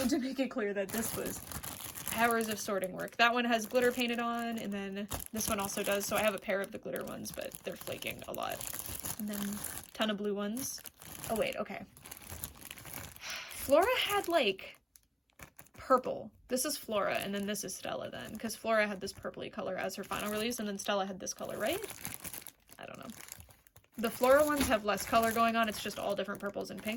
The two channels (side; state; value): both; identical; correlation 1.00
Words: make it clear that this was hours of sorting work. That one has glitter painted on, and then this one also does, so I have a pair of the glitter ones, but they're flaking a lot. And then a ton of blue ones. Oh wait, okay. Flora had like purple. This is Flora, and then this is Stella then, because Flora had this purpley color as her final release, and then Stella had this color, right? I don't know. The Flora ones have less color going on, it's just all different purples and